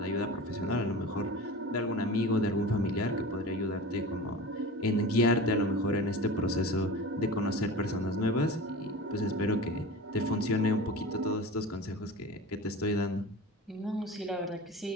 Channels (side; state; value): both; normal; correlation 0.33